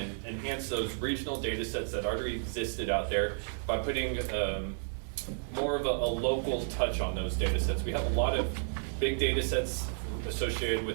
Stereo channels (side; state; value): left; silent; digital silence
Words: enhance those regional data sets that already existed out there by putting more of a local touch on those data sets. We have a lot of big data sets associated